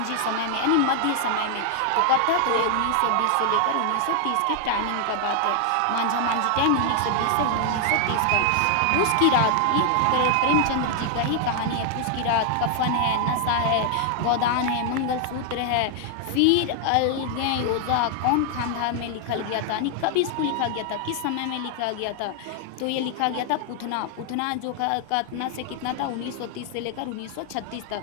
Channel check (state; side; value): different; both; correlation 0.00